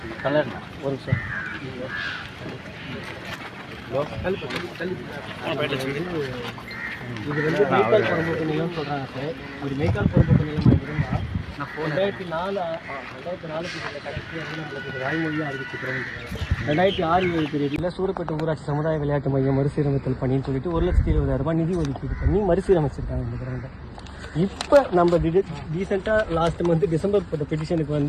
கலர் ஒரு சார் இது வந்து மெய்க்கால் புறம்போக்கு நிலம்னு சொல்கிறாங்க சார். ஒரு மெய்க்கால் புறம்போக்கு நிலமாக இருந்தால் 2004 கடைசி வந்து நம்மளுக்கு வாய்மொழியாக அறிவிச்சுக்கிறோம். 2006-7 சூரப்பேட்டை ஊராட்சி சமுதாய விளையாட்டு மையம் மறுசீரமைத்தல் பணின்னு சொல்லிட்டு 1,20,000 ரூபாய் நிதி ஒதுக்கீடு பண்ணி மறுசீரமைச்சிருக்காங்க இந்த கிரௌண்டை. இப்போ நம்ம ரீசெண்டாக லாஸ்ட் மந்த் டிசம்பர் போட்ட பெட்டிஷனுக்கு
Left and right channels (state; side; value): identical; both; correlation 1.00